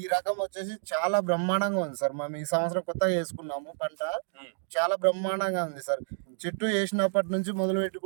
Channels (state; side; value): silent; left; digital silence